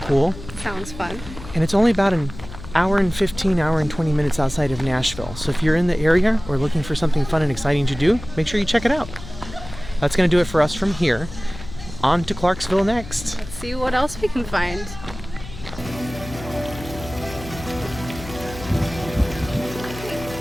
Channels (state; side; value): noise; left; hum, 13 dB below the sound